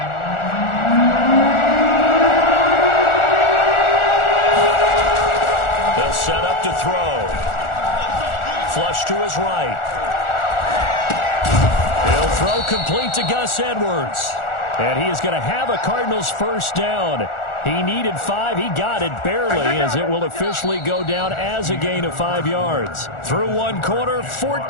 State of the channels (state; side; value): late; right; 1.4 ms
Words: Set up to throw. Flush to his right. He'll throw complete to Gus Edwards. And he is going to have a Cardinals first down. He needed 5. He got it barely as it will officially go down as a gain of 5 yards. Through one quarter,